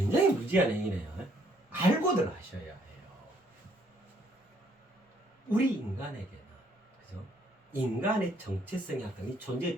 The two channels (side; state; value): both; normal; correlation 0.67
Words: 무지한 행위네요. 알고들 하셔야 해요. 우리 인간에게는 그죠? 인간의 정체성에 합당한 존재의